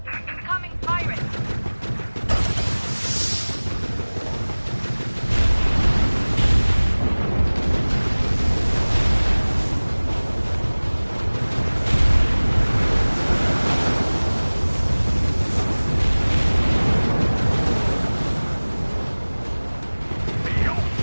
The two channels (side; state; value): both; inverted; correlation -1.00